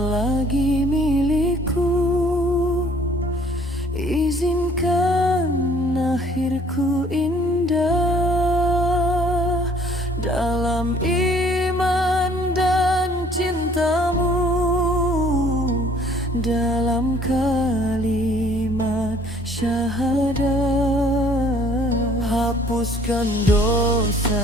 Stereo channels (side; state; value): both; normal; correlation 0.58